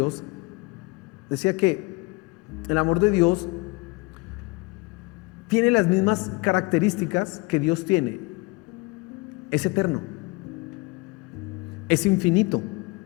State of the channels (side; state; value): right; quieter; 25.2 dB